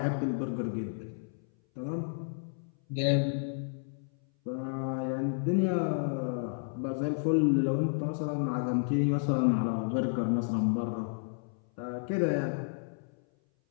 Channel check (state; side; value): silent; right; 57 dB below the other